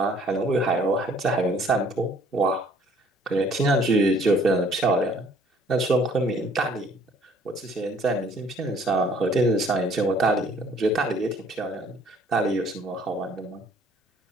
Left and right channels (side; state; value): both; normal; correlation 0.59